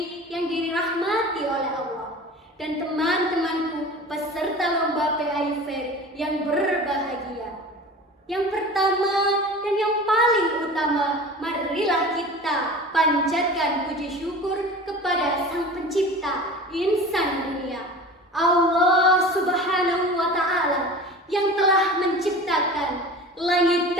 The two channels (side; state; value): both; normal; correlation 0.37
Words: yang dirahmati oleh Allah, dan teman-temanku peserta lomba PAI Fair yang berbahagia. Yang pertama dan yang paling utama, marilah kita panjatkan puji syukur kepada Sang Pencipta insan dunia, Allah Subhanahu wa Ta'ala, yang telah menciptakan langit